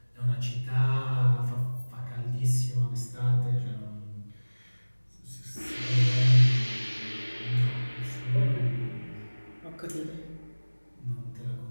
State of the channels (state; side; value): inverted; both; correlation -1.00